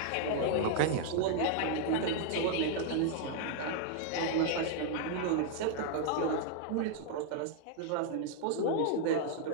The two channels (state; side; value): different; both; correlation 0.00